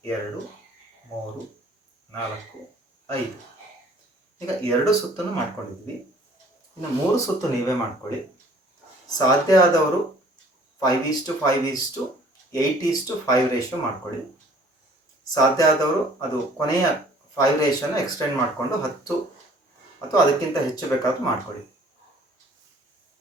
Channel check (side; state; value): both; normal; correlation 0.55